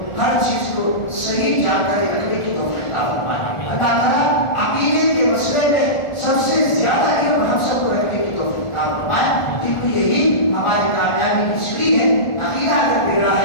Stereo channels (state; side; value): late; right; 1.4 ms